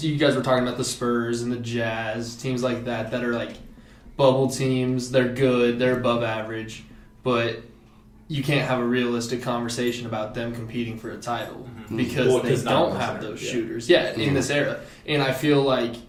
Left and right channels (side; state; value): both; identical; correlation 1.00